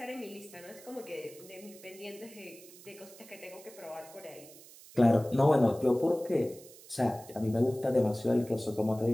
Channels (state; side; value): noise; right; hiss, 20 dB below the sound